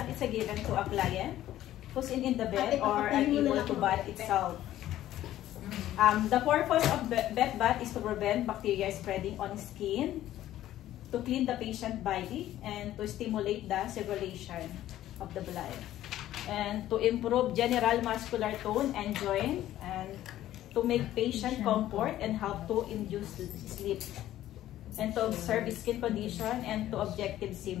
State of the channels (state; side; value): quieter; right; 13.4 dB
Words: is a given to a client who's in the bed or unable to bath itself. The purpose of bed bath is to prevent bacteria spreading on skin, to clean the patient body, and to stimulate the circulation of the blood, and to improve general muscular tone and joint, and to make patient comfort and help to induce sleep, and to observe skin condition and to objective